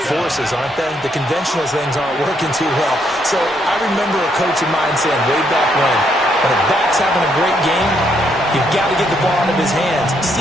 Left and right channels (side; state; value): both; normal; correlation 0.74